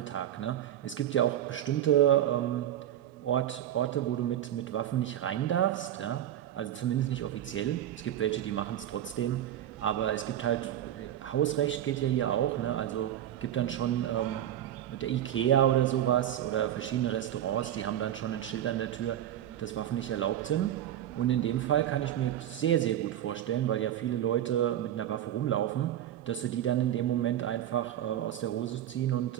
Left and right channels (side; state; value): left; quieter; 11.5 dB